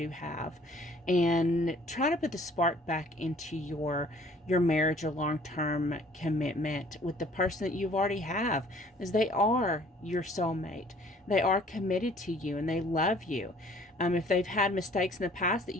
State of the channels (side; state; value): both; normal; correlation 0.56